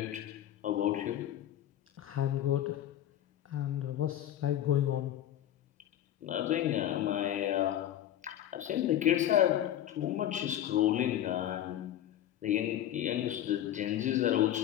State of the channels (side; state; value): right; quieter; 11.8 dB